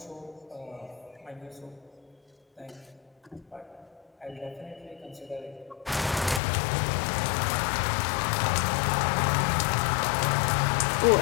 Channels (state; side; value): drops out; right; at 6.4 s